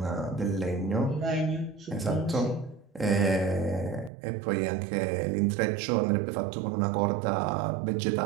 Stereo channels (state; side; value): drops out; left; at 4.1 s